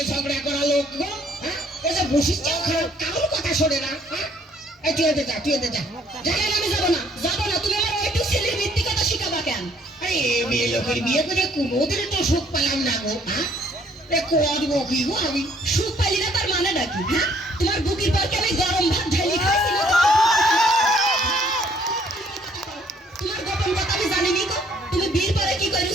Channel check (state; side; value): normal; both; correlation 0.63